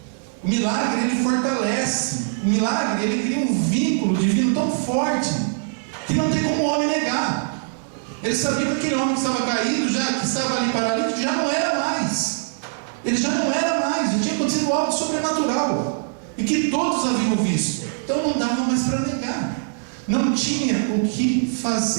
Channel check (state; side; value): silent; left; 64 dB below the other